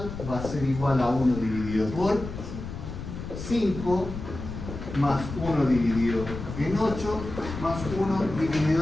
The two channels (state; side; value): noise; left; rumble, 9 dB below the sound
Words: va a ser igual a 1 dividido por 5 más 1 dividido en 8 más 1